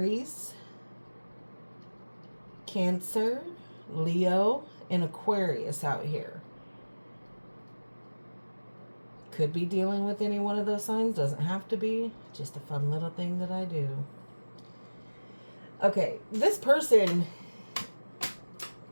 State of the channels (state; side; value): inverted; both; correlation -1.00